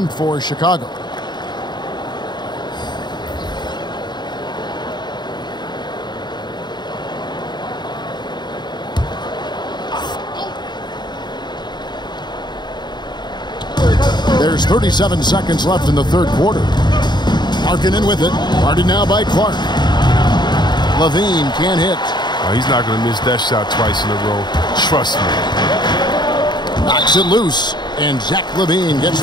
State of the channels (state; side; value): late; right; 0.21 ms